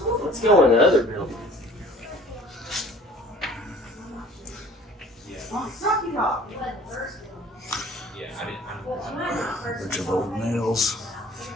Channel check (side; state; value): both; normal; correlation 0.50